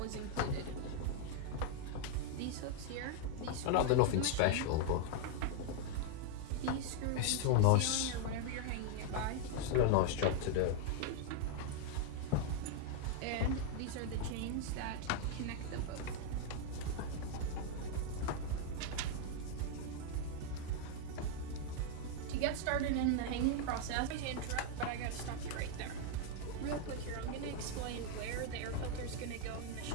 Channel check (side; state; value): both; different; correlation 0.00